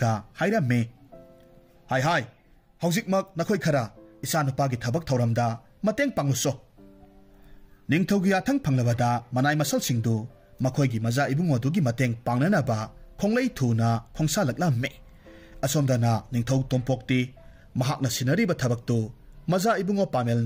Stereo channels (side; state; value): both; identical; correlation 1.00